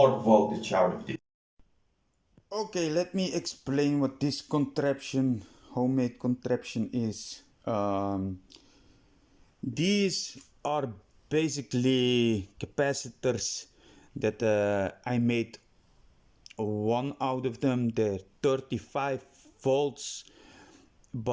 voltage out of this. Okay, let me explain what this contraption, homemade contraption is. These are basically capacitors that I made one out of them. They're 35 volts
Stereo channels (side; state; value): both; identical; correlation 1.00